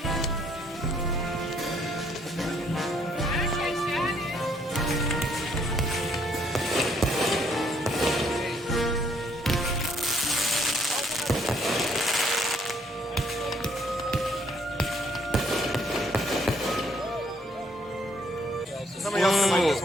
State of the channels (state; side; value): normal; both; correlation 0.67